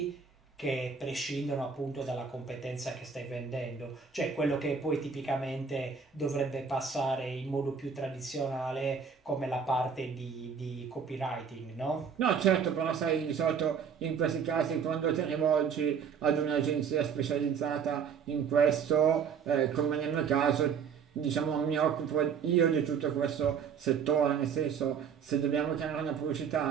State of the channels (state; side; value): quieter; left; 6.7 dB